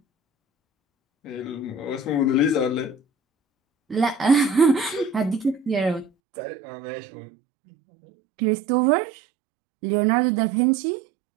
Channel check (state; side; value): drops out; left; at 6.1 s